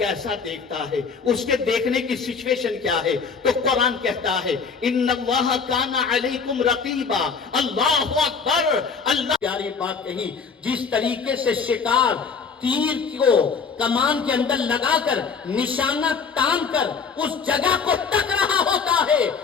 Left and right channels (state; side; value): quieter; right; 5.6 dB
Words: دیکھتا ہے, اس کے دیکھنے کی سچویشن کیا ہے؟ تو قرآن کہتا ہے ان اللہ کان علیکم رقیبا. اللہ اکبر. اللہ پیاری بات کہی, جس طریقے سے شکار تیر کو کمان کے اندر لگا کر نشانہ تان کر اس جگہ کو تک رہا ہوتا ہے,